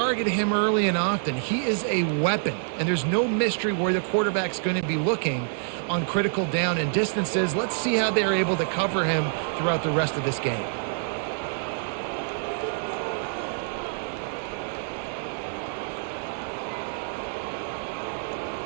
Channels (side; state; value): left; silent; digital silence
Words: him early and often. He is a weapon, and there's no mystery where the quarterback's going to be looking on critical down and distances. Let's see how they're able to cover him throughout the rest of this game.